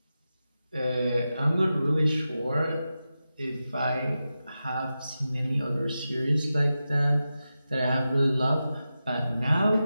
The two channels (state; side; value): inverted; both; correlation -0.92